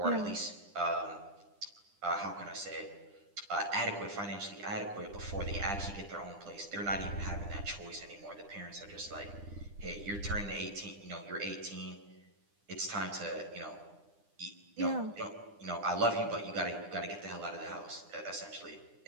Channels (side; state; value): left; late; 9.9 ms